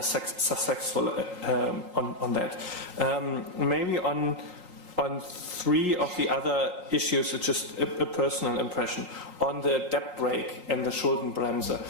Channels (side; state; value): left; late; 3.8 ms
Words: on that. Maybe on three of the other issues, it's just a personal impression. On the debt brake and the Schuldenbremse,